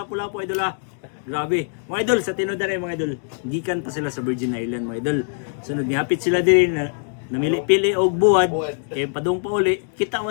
idol Grabe. Mga idol sa tinuod mga idol. Gikan pa sila sa Virgin Island mga idol. Sunod ni hapit sila diri na namili-pili og buwad kay padung pa uli. Kita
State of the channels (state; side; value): silent; right; 64 dB below the other